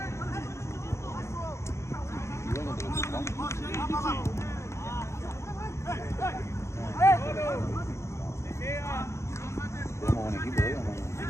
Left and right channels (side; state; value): right; late; 0.13 ms